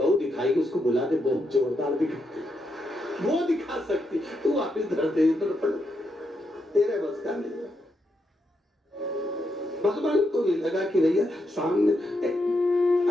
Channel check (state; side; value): normal; both; correlation 0.81